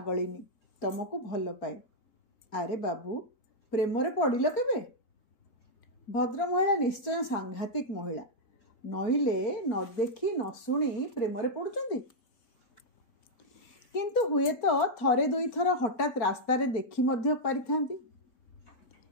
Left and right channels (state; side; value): late; right; 4.2 ms